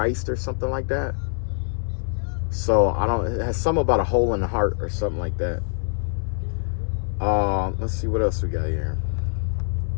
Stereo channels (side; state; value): right; silent; 62 dB below the other